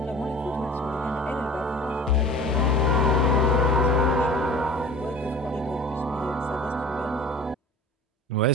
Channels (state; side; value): normal; both; correlation 0.42